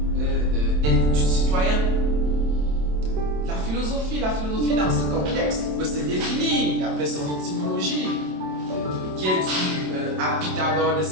du citoyen. La philosophie dans ce contexte peut se définir d'après son étymologie, qui est due à Pythagore de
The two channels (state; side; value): late; left; 27 ms